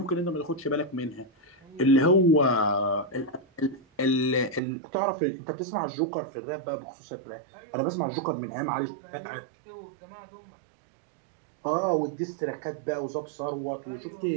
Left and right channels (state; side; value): drops out; left; at 4.6 s